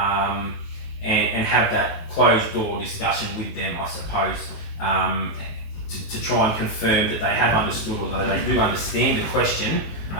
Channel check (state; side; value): late; right; 19 ms